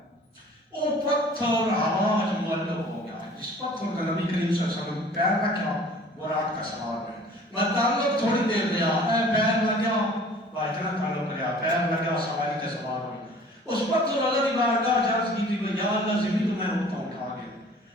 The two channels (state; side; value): normal; both; correlation 0.49